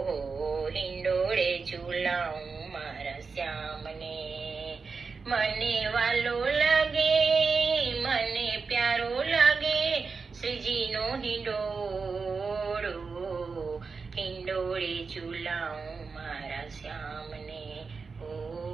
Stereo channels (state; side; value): quieter; left; 4.8 dB